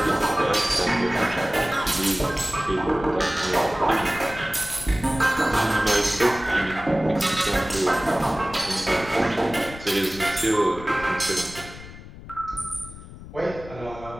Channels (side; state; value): left; noise; rumble, 15 dB below the sound